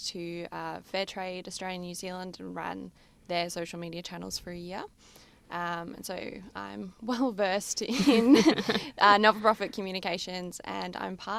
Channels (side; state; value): both; identical; correlation 1.00